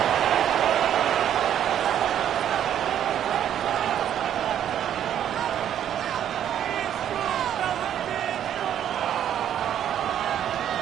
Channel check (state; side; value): quieter; left; 10.2 dB